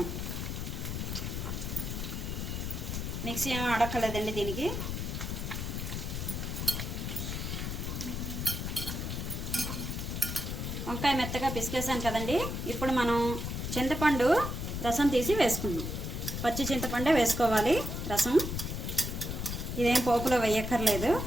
మిక్సీ ఏమీ అడక్కలేదండి దీనికి. వంకాయ మెత్తగా పిసికేసాను కదండి. ఇప్పుడు మనం చింతపండు రసం తీసి వేసుకుందాం. పచ్చి చింతపండే వేసుకోవాలి రసం. ఇదేం పోపులో వేయక్కర్లేదు.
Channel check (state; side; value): noise; left; rumble, 4 dB below the sound